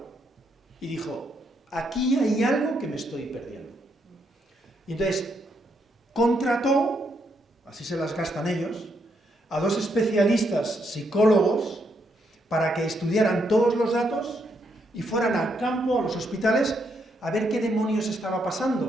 y dijo, aquí hay algo que me estoy perdiendo. Y entonces contrató, así se las gastan ellos, a dos especialistas psicólogos para que estudiaran todos los datos y fueran al campo, a los hospitales, a ver qué demonios estaba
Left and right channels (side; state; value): both; normal; correlation 0.77